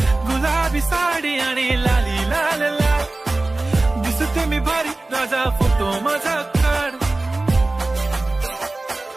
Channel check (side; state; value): left; quieter; 3.0 dB